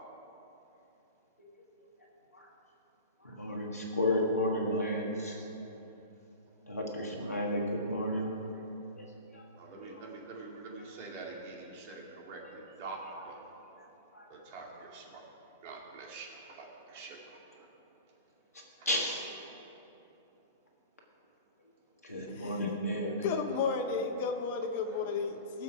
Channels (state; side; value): inverted; both; correlation -0.35